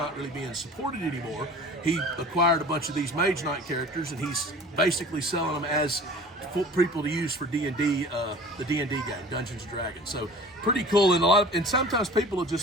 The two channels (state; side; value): normal; both; correlation 0.43